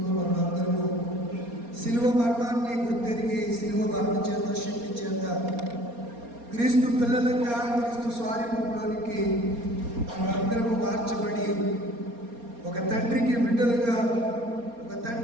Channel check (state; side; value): late; left; 4.3 ms